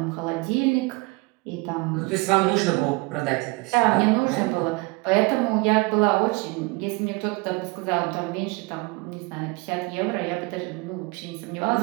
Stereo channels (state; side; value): quieter; left; 26.0 dB